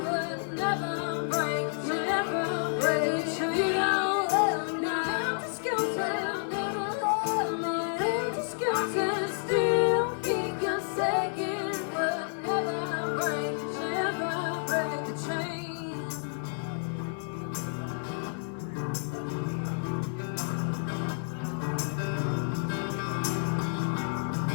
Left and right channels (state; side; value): silent; right; 56 dB below the other